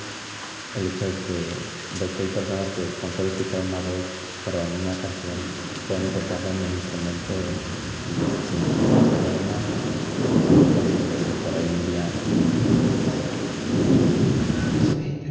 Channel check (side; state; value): both; identical; correlation 1.00